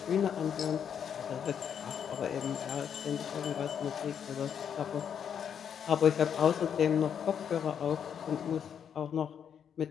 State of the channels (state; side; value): quieter; right; 8.1 dB